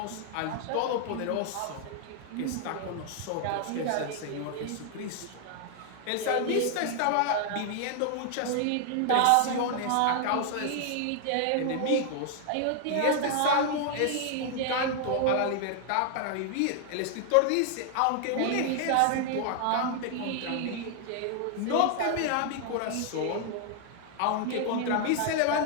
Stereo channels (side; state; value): both; different; correlation 0.00